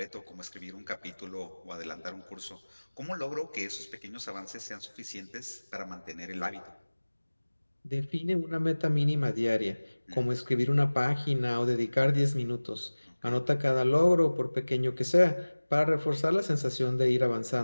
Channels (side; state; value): both; inverted; correlation -1.00